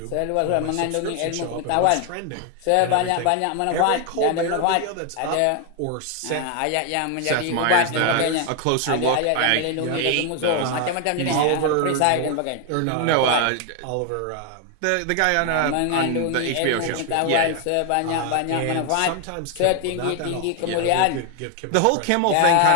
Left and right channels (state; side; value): different; both; correlation 0.01